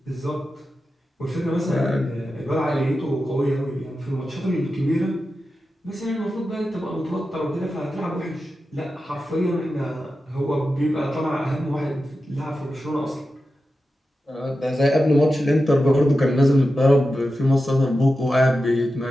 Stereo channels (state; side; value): normal; both; correlation 0.91